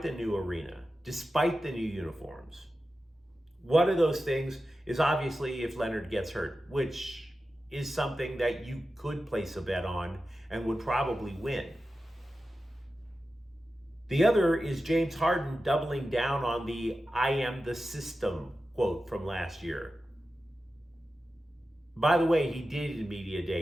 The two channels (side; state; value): both; normal; correlation 0.93